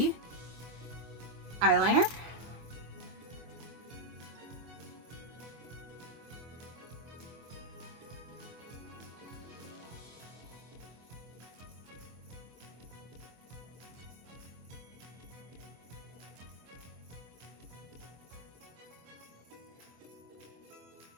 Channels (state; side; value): late; left; 24 ms